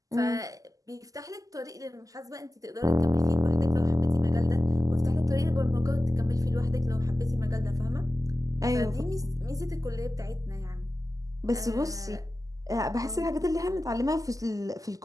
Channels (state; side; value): late; left; 0.17 ms